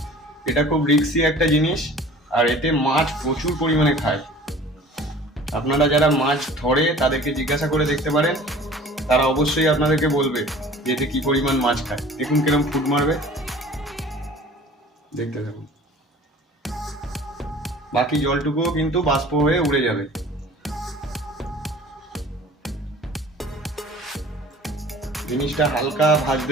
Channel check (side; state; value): both; normal; correlation 0.46